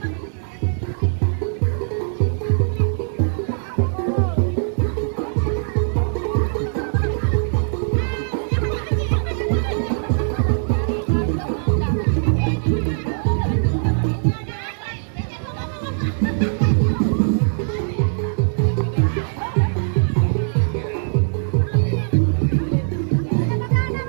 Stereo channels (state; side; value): silent; left; 65 dB below the other